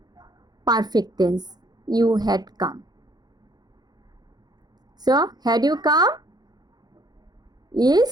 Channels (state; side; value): late; left; 0.19 ms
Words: perfect tense, you had come. So had you come